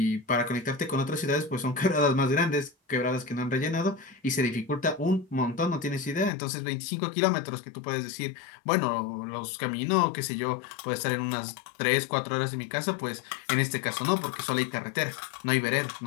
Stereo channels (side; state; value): right; drops out; at 6.3 s